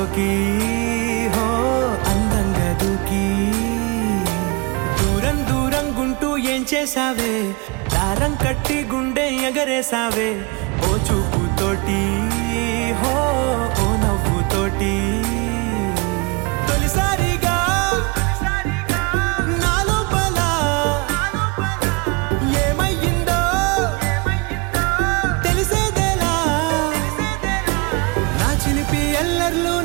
హో అందంగా దూకి దూరం దూరం గుంటూ ఏం చేసావే, దారం కట్టి గుండె ఎగరేసావే ఓ చూపుతోటి. హో ఓ నవ్వుతోటి తొలిసారిగా నా లోపల ఏమయ్యిందో తెలిసేదేలా. నా చిలిపి ఎల్లర్లు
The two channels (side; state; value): left; quieter; 27.9 dB